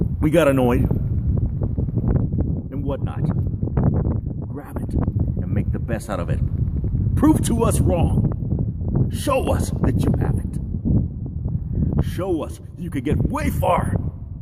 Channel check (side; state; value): both; identical; correlation 1.00